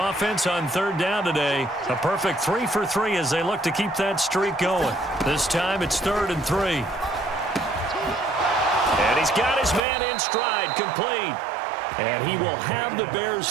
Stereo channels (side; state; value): left; drops out; at 9.8 s